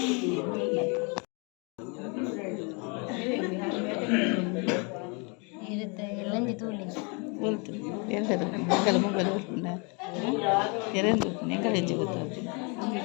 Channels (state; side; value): quieter; right; 33.1 dB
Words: ಇರುತ್ತೆ ಎಲ್ಲಂಜಿ ತೂಲಿ ಎಂಕಲ ಮೊಬೈಲ್ ಓಡ್ಕೊಂಡ ಎರಡು ಎಂಕಲ ಹೆಚ್ಚು ಗೊತ್ತಾಗ್ತದೆ